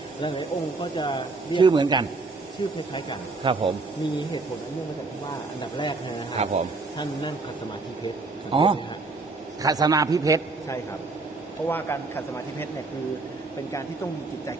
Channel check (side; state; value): left; quieter; 3.7 dB